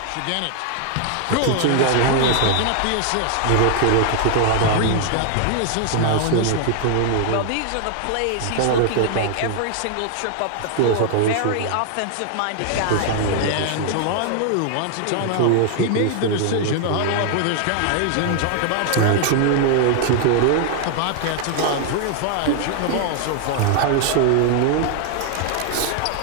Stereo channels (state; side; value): different; both; correlation 0.00